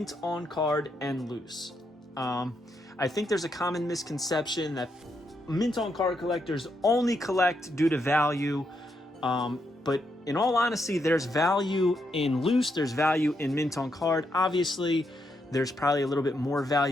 on card and loose? I think there's a common misconception that mint on card collectors only collect due to value, but in all honesty, there's value in loose, there's value in mint on card. Obviously, there's probably a little bit more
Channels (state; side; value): normal; both; correlation 0.80